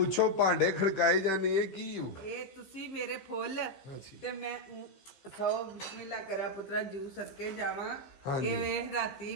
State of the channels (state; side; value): late; right; 15 ms